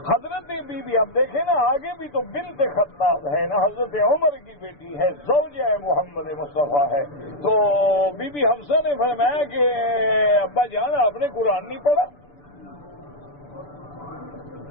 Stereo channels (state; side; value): late; right; 6.9 ms